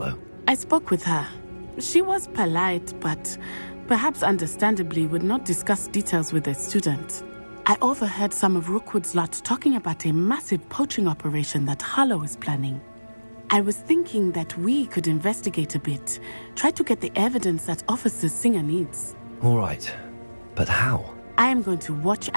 I spoke with her. She was polite, but perhaps understandably would not discuss details with a student. I overheard some of Rookwood's lot talking about a massive poaching operation that Harlow is planning. I was thinking that we could investigate a bit, try to get the evidence that Officer Singer needs. All right, but how? I am going to watch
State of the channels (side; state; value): both; inverted; correlation -1.00